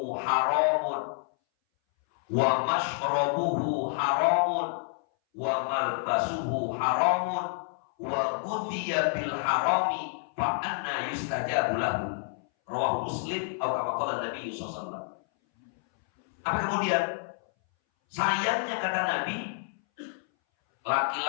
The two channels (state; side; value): silent; right; 59 dB below the other